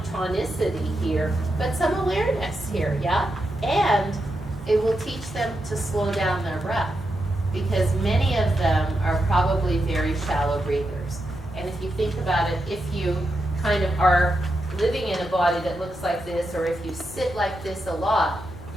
tonicity here, but some awareness here, yeah? And it will teach them to slow down their breath, because many of them are probably very shallow breathers. And if you think about it, if you kind of are living in a body that looks like this, or if you sit like this a lot,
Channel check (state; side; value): normal; both; correlation 0.86